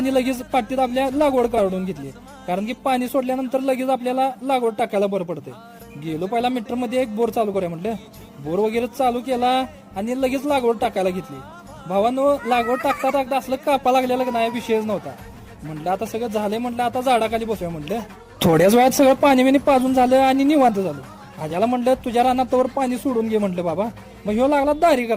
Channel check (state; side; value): identical; both; correlation 1.00